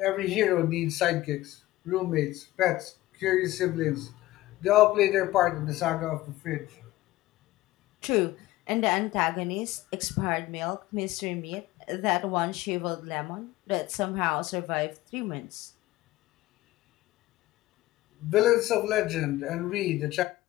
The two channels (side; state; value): right; quieter; 17.0 dB